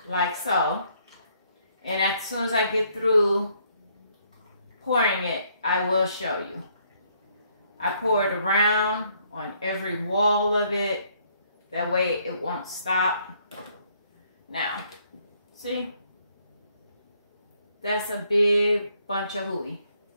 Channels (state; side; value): inverted; both; correlation -0.68